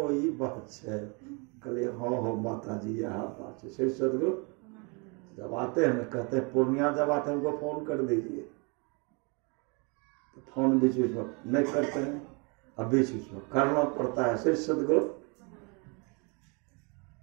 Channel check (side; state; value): left; quieter; 32.6 dB